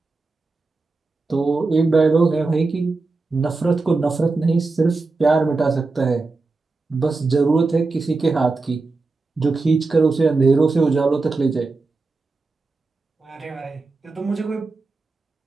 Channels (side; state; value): left; quieter; 3.7 dB